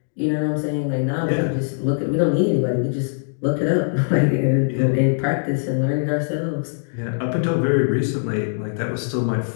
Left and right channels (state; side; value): silent; right; digital silence